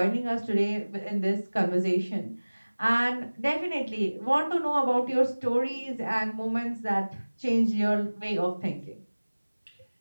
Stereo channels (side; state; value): both; inverted; correlation -1.00